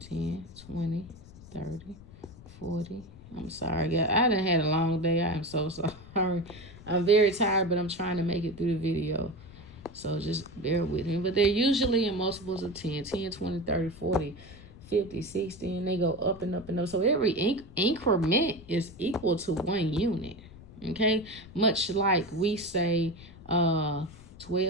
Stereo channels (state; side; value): noise; left; rumble, 19 dB below the sound